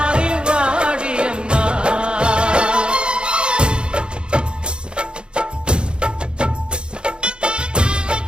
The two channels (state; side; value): late; left; 0.053 ms